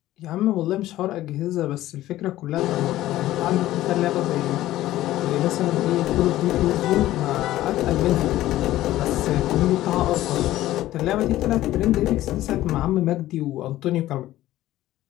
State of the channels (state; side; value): quieter; right; 15.0 dB